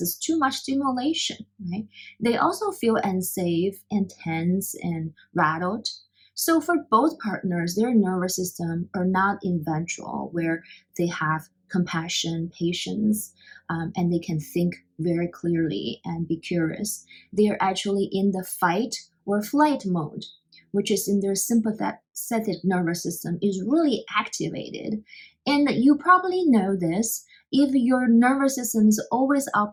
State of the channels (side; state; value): both; identical; correlation 1.00